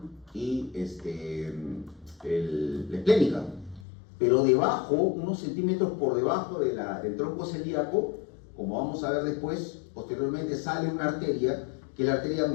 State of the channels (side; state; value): right; drops out; at 3.9 s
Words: y la esplénica. Pero debajo, unos centímetros por debajo del tronco celíaco, como vamos a ver después, posteriormente sale una arteria, que es la arteria